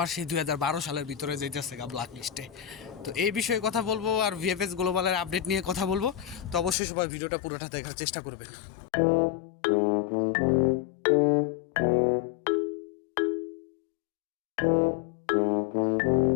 সেই 2012 সালের ভিতরে যেতেছে ব্ল্যাক লিস্টে। তো এই বিষয়ে কথা বলবো আর ভিএফএস গ্লোবালের আপডেট নিয়ে কথা বলবো। তো অবশ্যই সবাই ভিডিওটা পুরোটা দেখার চেষ্টা করবেন।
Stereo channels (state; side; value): drops out; right; at 6.8 s